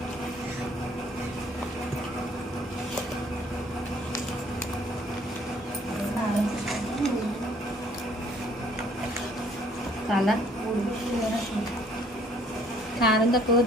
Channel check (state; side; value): normal; both; correlation 0.60